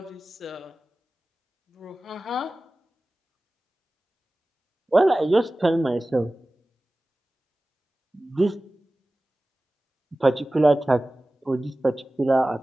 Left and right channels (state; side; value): normal; both; correlation 0.97